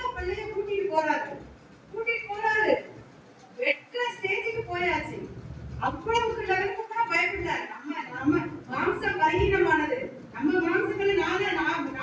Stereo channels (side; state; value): both; identical; correlation 1.00